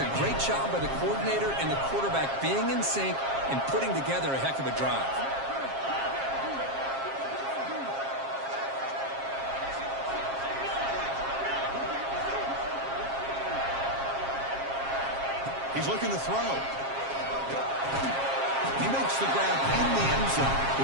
great job by the coordinator and the quarterback being in sync and putting together a heck of a drive. He's looking to throw. He makes the grab in the end zone.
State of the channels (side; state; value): left; late; 7.4 ms